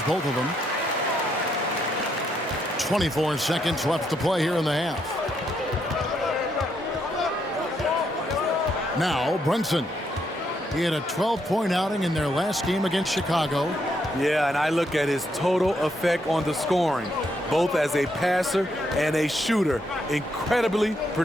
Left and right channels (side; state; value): both; normal; correlation 0.76